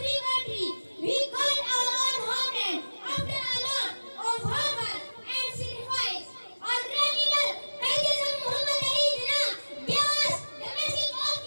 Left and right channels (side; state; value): both; inverted; correlation -1.00